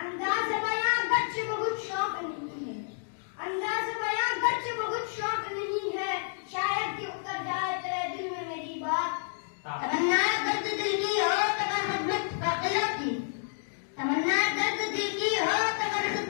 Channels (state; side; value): silent; right; digital silence